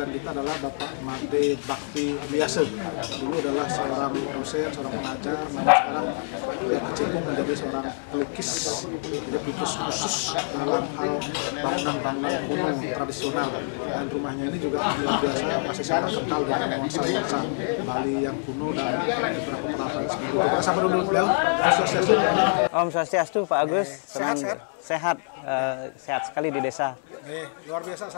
kita adalah Bapak Made Bakti Biasa. Dulu adalah seorang dosen, seorang pengajar, namun sekarang dia kecimpung menjadi seorang pelukis, jadi pelukis khusus dalam hal bangunan-bangunan kuno tradisional, dan rumahnya ini juga luar biasa, masih sangat kental dengan nuansa Bali yang kuno dan beberapa peralatan sendiri. Kita sapa dulu beliau. Om Swastiastu, Pak Agus. Sehat. Sehat sekali di desa. Luar biasa,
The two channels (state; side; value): silent; right; digital silence